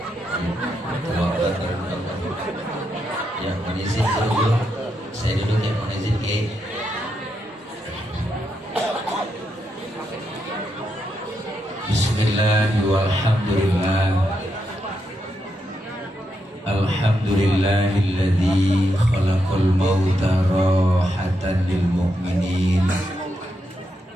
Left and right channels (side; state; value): both; normal; correlation 0.82